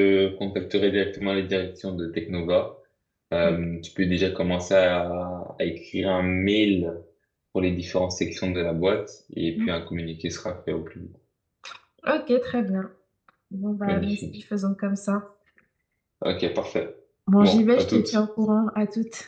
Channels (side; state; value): both; identical; correlation 1.00